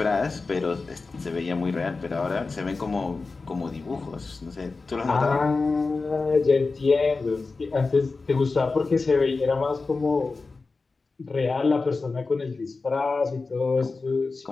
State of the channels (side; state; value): right; quieter; 4.0 dB